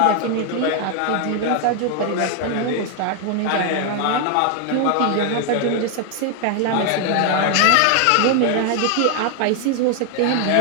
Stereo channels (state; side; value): different; both; correlation 0.00